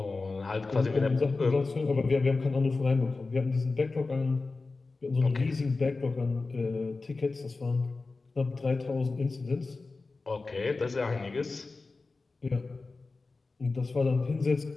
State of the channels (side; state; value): right; quieter; 3.7 dB